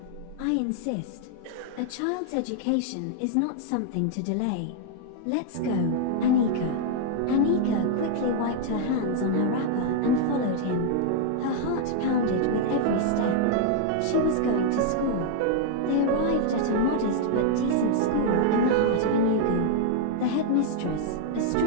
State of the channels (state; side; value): different; both; correlation 0.00